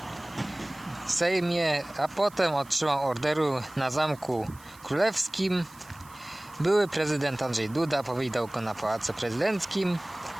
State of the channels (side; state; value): right; noise; hiss, 24 dB below the sound